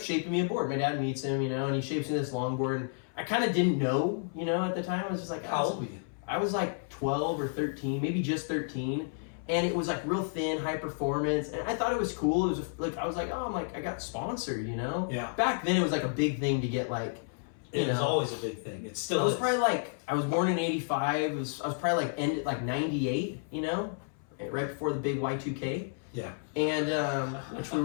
me a board. My dad meets him, and he shapes me this longboard. And I kind of didn't know, at the time. I was just like, How old were you? I was like 12 or 13, maybe just 13. And it was like real thin, high performance. And I thought it was cool. It was like, I was like, oh, I got sponsored, Yeah. Back then it was like a big thing to get like, It was always a big thing. It still I was is. probably like, I was born in 85. I was probably like ended like 98, right before the big Y2K. Yeah. And which we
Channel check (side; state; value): right; silent; 57 dB below the other